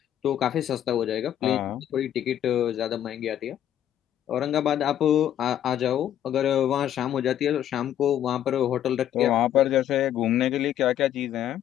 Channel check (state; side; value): quieter; right; 11.0 dB